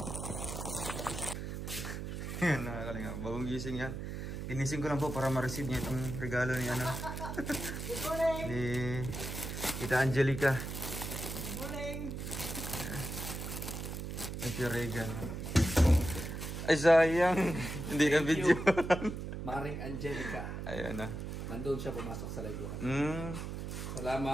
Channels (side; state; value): right; noise; hum, 6 dB below the sound